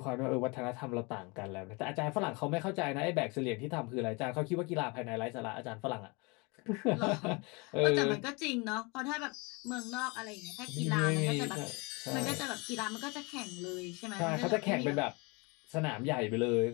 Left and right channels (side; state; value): right; quieter; 28.6 dB